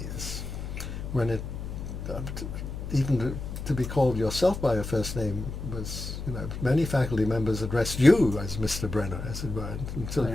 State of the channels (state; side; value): noise; left; hum, 7 dB below the sound